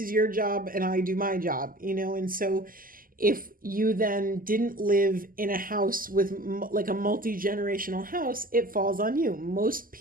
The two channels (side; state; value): left; late; 0.41 ms